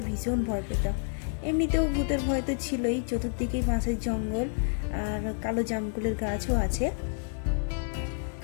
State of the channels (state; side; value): silent; right; 58 dB below the other